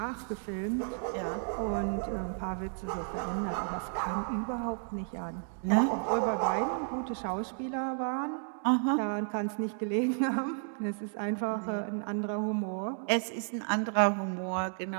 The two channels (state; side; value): silent; left; 56 dB below the other